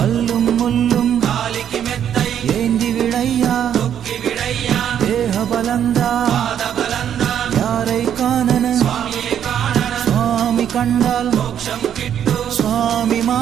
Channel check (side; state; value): left; quieter; 9.4 dB